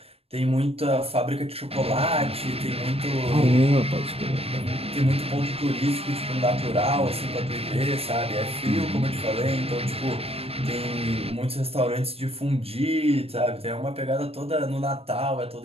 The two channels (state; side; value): late; left; 0.28 ms